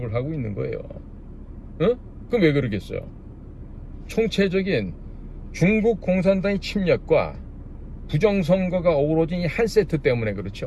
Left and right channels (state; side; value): identical; both; correlation 1.00